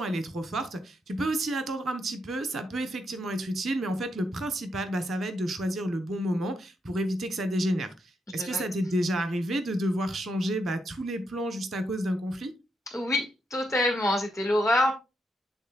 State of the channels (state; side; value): normal; both; correlation 0.81